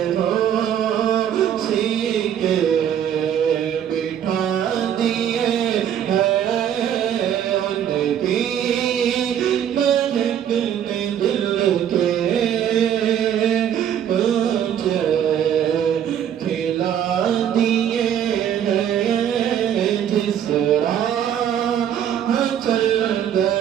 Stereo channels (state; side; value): quieter; left; 9.6 dB